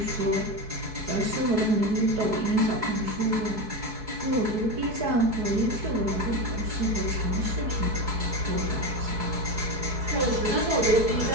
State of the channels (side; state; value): left; late; 4.7 ms